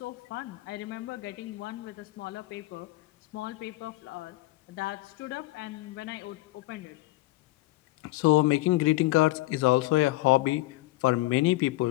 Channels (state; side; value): quieter; right; 18.9 dB